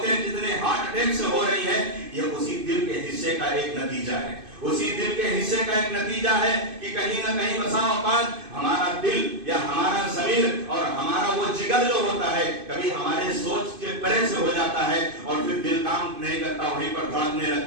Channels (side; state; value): left; late; 2.5 ms